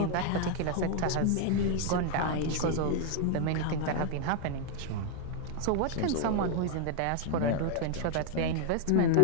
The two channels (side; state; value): both; different; correlation 0.00